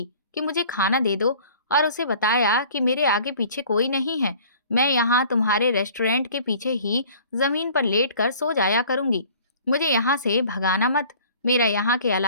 कि मुझे खाना दे दो, और उसे बताया कि मेरे आगे पीछे कोई नहीं है। मैं यहाँ तुम्हारे रेस्टोरेंट के पीछे ही जमीन पर लेट कर सो जाया करूंगी। मुझे यहाँ से भगाना मत। मेरा यहाँ के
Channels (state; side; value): inverted; both; correlation -0.49